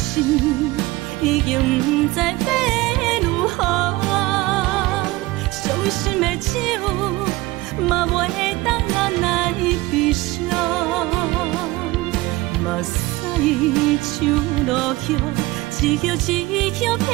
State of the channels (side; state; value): left; quieter; 20.0 dB